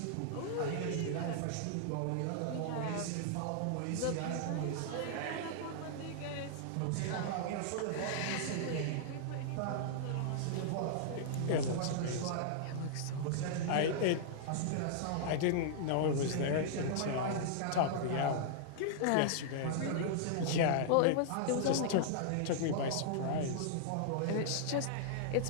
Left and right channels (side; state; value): both; different; correlation -0.01